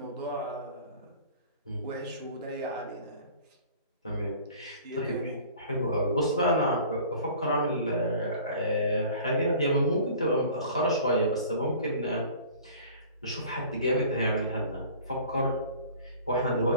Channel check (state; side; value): inverted; both; correlation -0.46